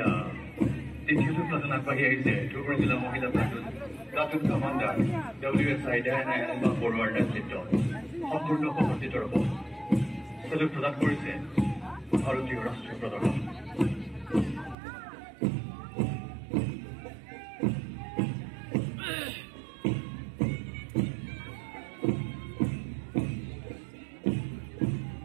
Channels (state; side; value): drops out; left; at 14.8 s